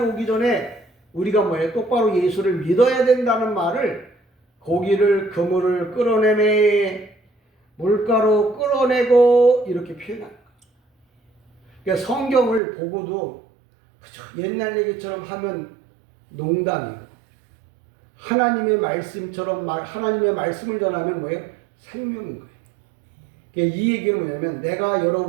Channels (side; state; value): left; drops out; at 12.6 s